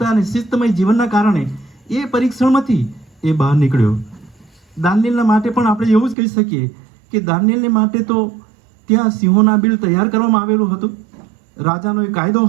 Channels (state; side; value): drops out; left; at 6.2 s